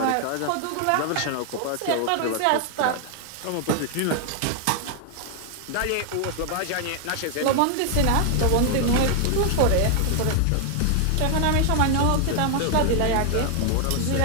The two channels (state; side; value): different; both; correlation 0.00